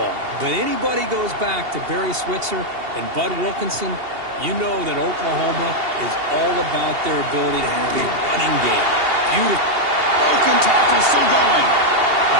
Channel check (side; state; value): left; late; 2.8 ms